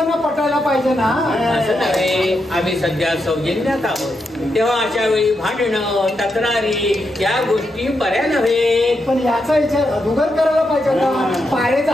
पटायला पाहिजे ना. असं नव्हे, आम्ही सध्या सौजन्यात आहोत, तेव्हा अशा वेळी भांडणं तक्रारी या गोष्टी बऱ्या नव्हे. पण याचा विचार अधुगर करायला पाहिजे होता. पारेचा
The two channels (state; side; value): normal; both; correlation 0.84